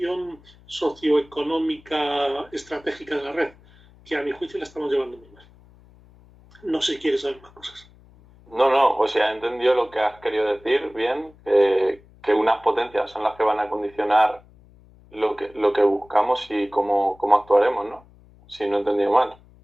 socioeconómica estratégica de la red, que a mi juicio la estamos llevando muy mal. No sé si quieres saber más cosas. No, o sea, he entendido lo que has querido decir bien, que unas potencias son las que van a condicionar lo que buscamos y cómo actuaremos, ¿no? Si no he entendido mal.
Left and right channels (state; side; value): noise; left; hum, 26 dB below the sound